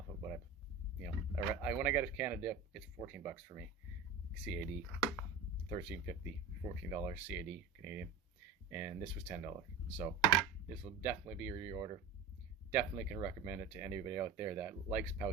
of what when I got a can of dip, it's $14 for me, CAD, $13.50, $14 CAD Canadian, and this was $10. So this will definitely be a reorder. Definitely can recommend it to anybody out there that likes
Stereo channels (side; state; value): left; quieter; 5.2 dB